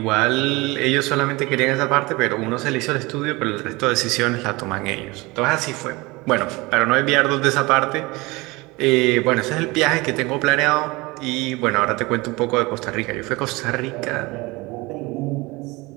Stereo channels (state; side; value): quieter; left; 23.3 dB